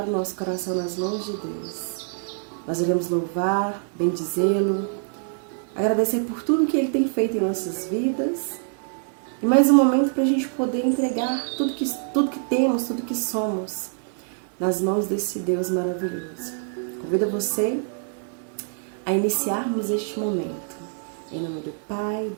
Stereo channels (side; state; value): left; silent; digital silence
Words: o nosso coração nas mãos de Deus. Nós iremos louvar, bendizê-lo, agradecer por tudo que Ele tem feito em nossas vidas e mais um momento para a gente poder entregar tudo que temos, tudo que somos nas mãos desse Deus maravilhoso. Convido você a iniciarmos este momento. Em nome do Pai,